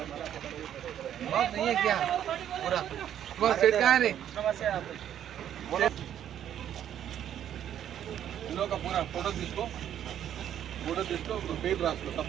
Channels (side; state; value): left; quieter; 10.3 dB